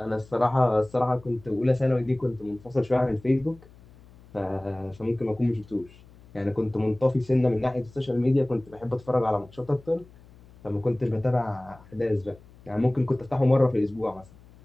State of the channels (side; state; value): left; noise; hum, 24 dB below the sound